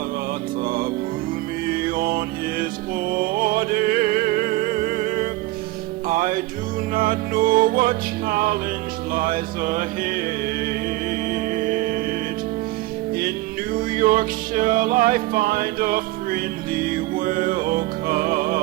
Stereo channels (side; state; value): left; quieter; 18.9 dB